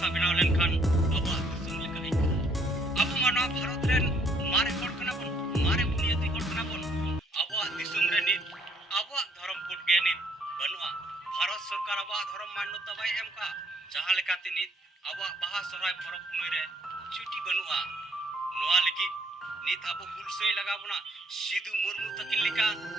benaw lenkhan aba disum leka ikka abu mano bharat ren mare hor kana bon mare buniyati hor kana bon aba disum re ni aba dharam code ge ni banua bharat sarkar aba dharam manyota bai emka jaha lekate ni aba baha sorai porok punoi re chuti banua noa legi nit abo hulsei lagabona sidu murmu takin leka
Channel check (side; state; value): both; normal; correlation 0.66